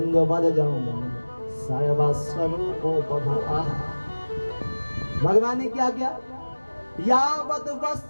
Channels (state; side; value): inverted; both; correlation -1.00